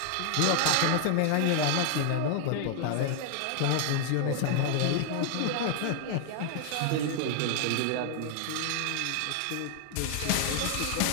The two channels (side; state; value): both; different; correlation 0.00